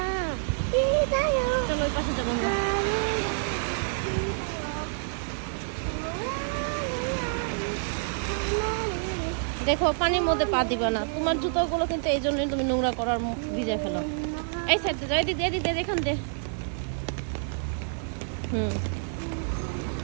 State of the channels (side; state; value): left; silent; 55 dB below the other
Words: চলো ওই পাশে যাবো আমরা। দেখো পানির মধ্যে পা দিবা না, তোমার জুতোগুলো কিন্তু এই জন্যই তুমি নোংরা করার ভিজে ফেলো। এই সাইডে যাই দিদি, এদিকে এখান দে।